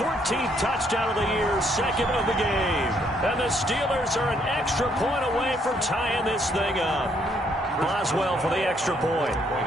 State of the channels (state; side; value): normal; both; correlation 0.70